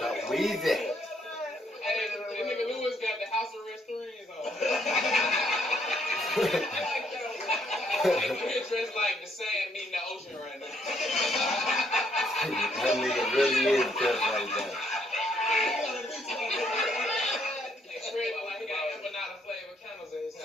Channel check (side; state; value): both; normal; correlation 0.71